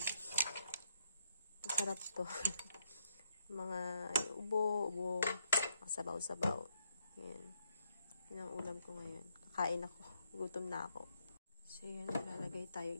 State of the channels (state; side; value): inverted; both; correlation -0.76